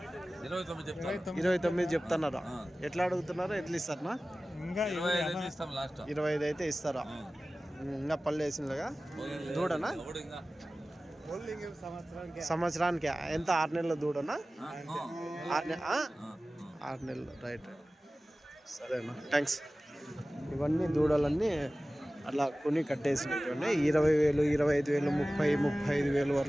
29 చెప్తున్నారా? ఎట్లా అడుగుతున్నారా? ఎట్లా ఇస్తారా? 25 అయితే ఇస్తారా? ఇంకా పళ్ళు వేసిందిగా దూడనా? సంవత్సరానికి ఎంత? 6 నెలల దూడనా? 6 నెలలు. రైట్, సరేనా, థ్యాంక్స్. ఇవన్నీ దూడలన్నీ అలా కొని కట్టేసినటువంటి 20,000, 25,000, 35,000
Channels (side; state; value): both; normal; correlation 0.97